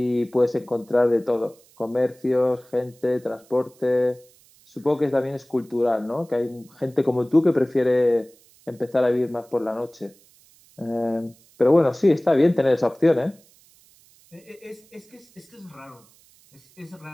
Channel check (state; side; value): noise; right; hiss, 29 dB below the sound